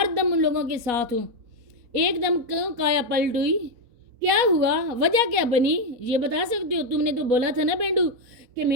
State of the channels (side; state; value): left; late; 4.2 ms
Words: دم ان لوگوں کے ساتھ ہوں۔ ایک دم کیوں کایا پلٹ ہوئی؟ کیا ہوا؟ وجہ کیا بنی؟ یہ بتا سکتے ہو؟ تم نے تو بولا تھا نا پینڈو کہ